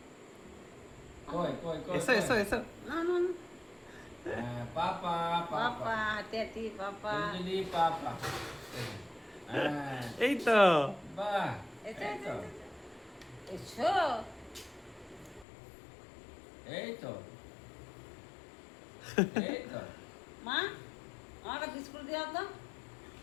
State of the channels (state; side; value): drops out; right; at 15.5 s